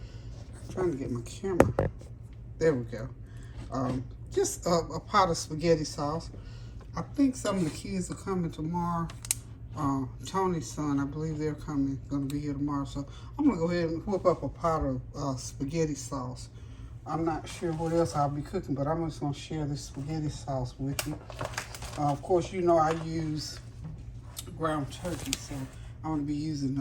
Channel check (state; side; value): identical; both; correlation 1.00